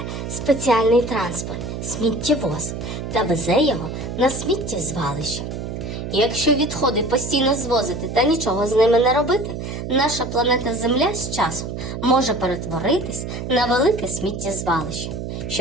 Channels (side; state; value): right; noise; hum, 6 dB below the sound